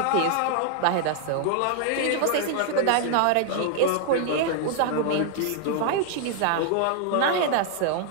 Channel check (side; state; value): both; different; correlation 0.00